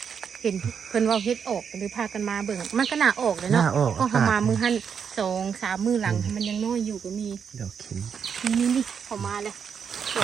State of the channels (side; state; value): left; quieter; 7.0 dB